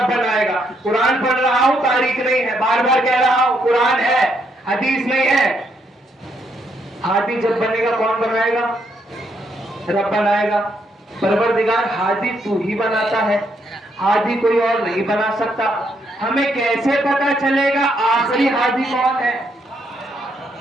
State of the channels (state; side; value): normal; both; correlation 0.75